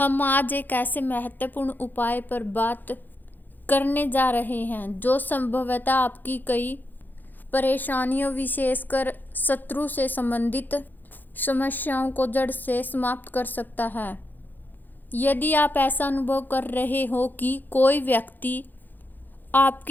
आज एक ऐसे महत्वपूर्ण उपाय पर बात करने जा रहे हैं जो संभवतः आपकी कई परेशानियों, विशेषकर शत्रु से संबंधित समस्याओं को जड़ से समाप्त कर सकता है। यदि आप ऐसा अनुभव कर रहे हो कि कोई व्यक्ति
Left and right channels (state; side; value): late; right; 0.087 ms